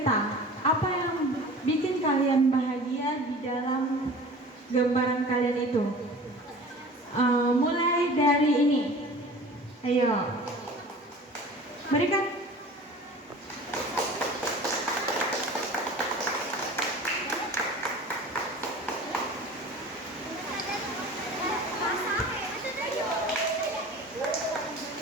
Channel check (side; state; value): both; normal; correlation 0.41